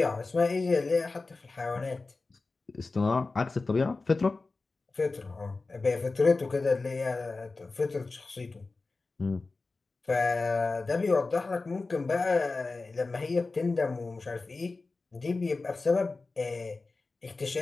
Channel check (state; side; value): quieter; right; 3.7 dB